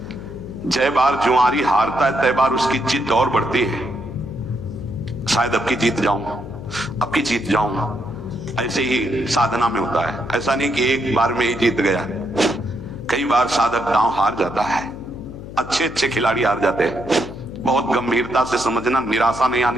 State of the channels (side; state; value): left; noise; hum, 12 dB below the sound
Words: जय बार जुआरी हारता है तय बार उसकी जिद और बढ़ती है। शायद अब की जीत जाऊं, अब की जीत जाऊं। ऐसे ही साधना में होता है। ऐसा नहीं कि एक बार में ही जीत गया, कई बार साधक दांव हार जाता है। अच्छे अच्छे खिलाड़ी हार जाते हैं। बहुत गंभीरता से समझना, निराशा नहीं